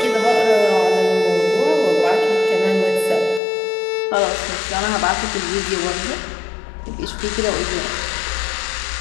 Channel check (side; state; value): right; drops out; at 3.4 s